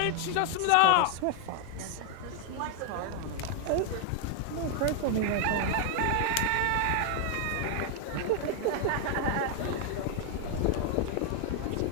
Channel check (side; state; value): both; different; correlation 0.00